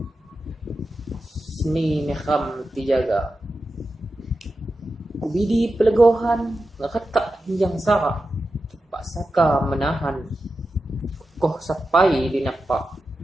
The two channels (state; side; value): normal; both; correlation 0.91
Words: Sini ni kham tijaga. Kubidi pelegohan ngakata hiyang saka. Pasaka menahan. Koh sapai dinapa.